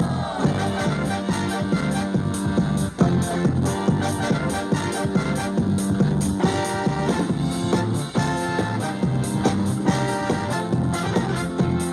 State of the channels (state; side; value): identical; both; correlation 1.00